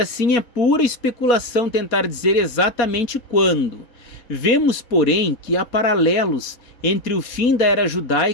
assim é pura especulação tentar dizer exatamente quando. Vemos, porém, que há paralelos entre o fim da era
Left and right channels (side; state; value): right; late; 4.2 ms